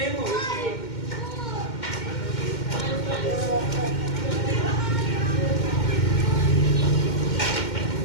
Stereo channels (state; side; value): late; right; 2.1 ms